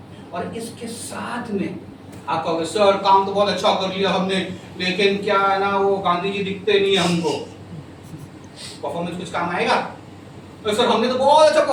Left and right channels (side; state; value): both; identical; correlation 1.00